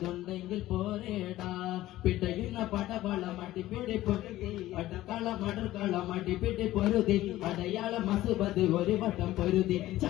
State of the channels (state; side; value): quieter; right; 15.5 dB